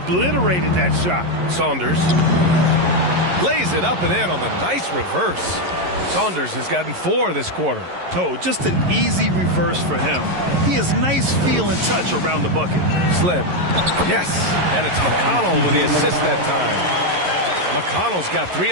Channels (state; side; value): late; left; 11 ms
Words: that shot. Saunders lays it up and in on the nice reverse. Saunders has gotten 4 this quarter. Oh, just an easy reverse for him. He has nice feel and touch around the bucket. Slim. Yes. And it's McConnell with the assist that time. McConnell's got 3